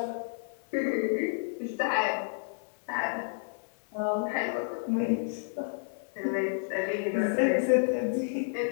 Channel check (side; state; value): right; silent; digital silence